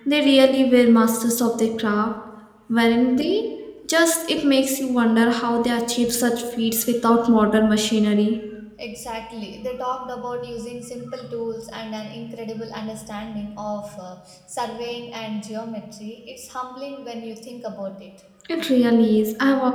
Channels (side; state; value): both; identical; correlation 1.00